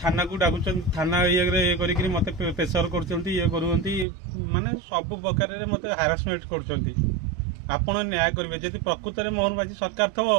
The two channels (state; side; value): drops out; left; at 4.0 s